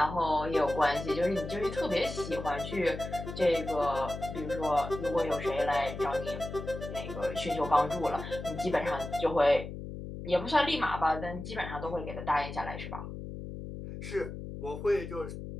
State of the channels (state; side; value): noise; left; hum, 9 dB below the sound